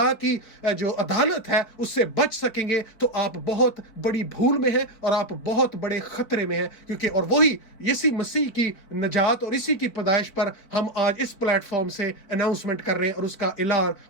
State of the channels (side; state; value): right; late; 4.5 ms